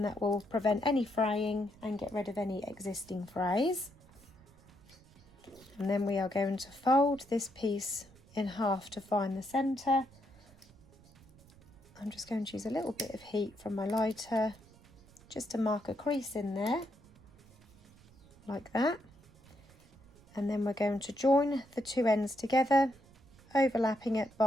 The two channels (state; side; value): noise; right; rumble, 25 dB below the sound